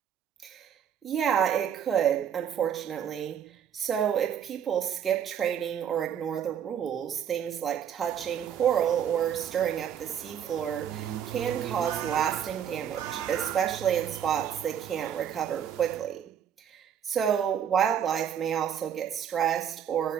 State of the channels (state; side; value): quieter; left; 8.9 dB